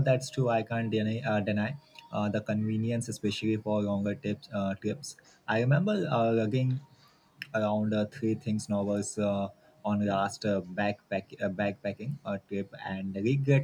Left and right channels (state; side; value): identical; both; correlation 1.00